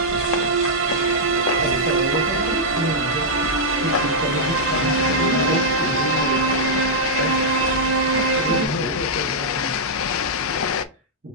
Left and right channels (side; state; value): both; normal; correlation -0.07